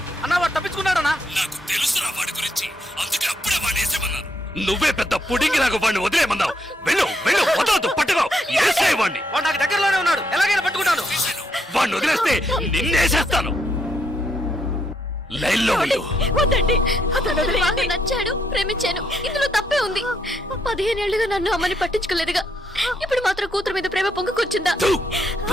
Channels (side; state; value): both; normal; correlation 0.76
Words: అన్నా వాడు తప్పించుకున్నాడన్నా నాకు తెలుసురా వాడి గురించి అందుకే అప్పుడే వాడిని వేసేమన్నాను నువ్వే పెద్ద పుడింగిలాగా వాడిని వదిలేమన్నావు వెళ్ళు వెళ్ళు వదలదు పట్టుకో వేసే వాడిని వాడు నాకు దగ్గరలోనే ఉన్నాడు ఎలాగైనా పట్టుకుంటాను వాడిని వదిలేస్తే నిన్నేసేస్తాను లైన్లో వెళ్ళు నాకు నచ్చాడు ప్రేమించాను ఇందులో తప్పే ఉంది 15 ఏళ్లుగా నన్ను అమ్మని పట్టించుకోలేదుగా ఇప్పుడు మాత్రం కూతురు మీద ప్రేమ పొంగుకొచ్చిందా థు,